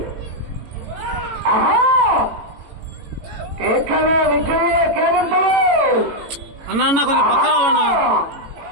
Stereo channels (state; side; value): late; left; 18 ms